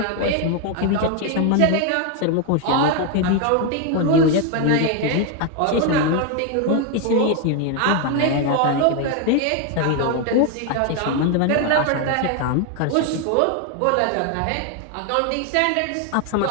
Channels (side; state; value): both; different; correlation 0.01